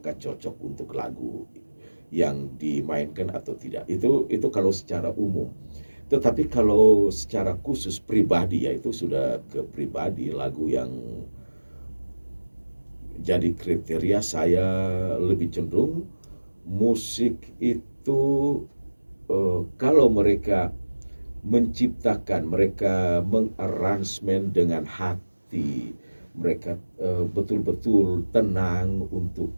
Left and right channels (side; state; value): both; inverted; correlation -1.00